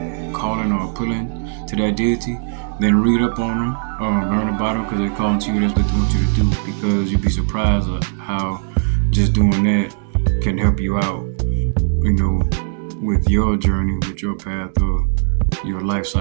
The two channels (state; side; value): silent; left; digital silence